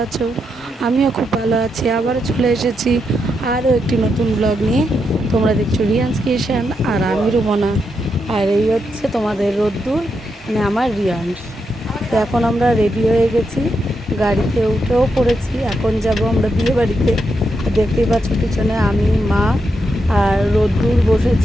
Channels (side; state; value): both; normal; correlation 0.83